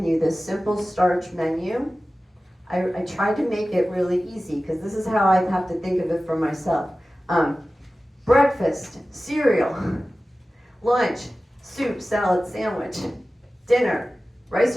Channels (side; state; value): both; normal; correlation 0.96